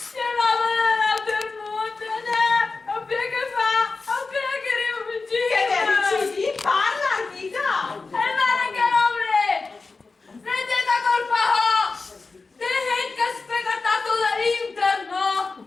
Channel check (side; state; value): right; quieter; 4.0 dB